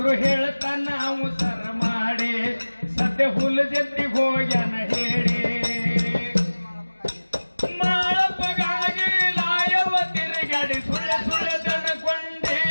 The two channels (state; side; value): inverted; both; correlation -1.00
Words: ಹೇಳ್ತಾನ ಅವು ಸರ ಮಾಡಿ ಸದ್ಯ ಹುಲ ಜಂತಿಗೆ ಹೋಗ್ಯಾನ ಹೇಳಿ ಮಾಳಪ್ಪಗಾಗಿ ಲಾಯವ ತಿರುಗಾಡಿ ಸುಳ್ಳ ಸುಳ್ಳ ದನಕೊಂಡೆ